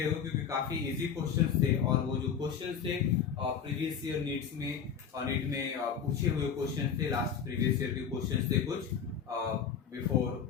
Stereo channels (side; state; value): right; quieter; 7.4 dB